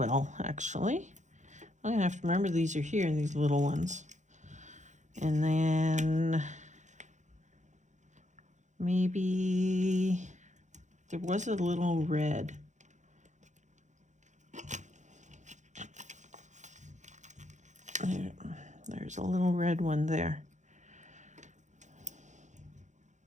actually. I'm gonna have to remember these are here, these little ones. And then maybe there was a little red. There's a little red one there.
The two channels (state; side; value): late; left; 0.35 ms